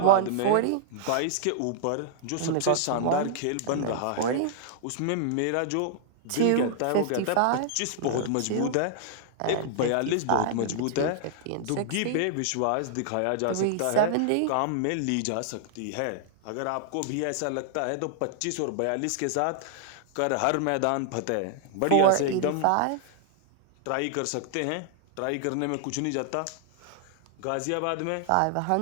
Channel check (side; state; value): both; different; correlation -0.01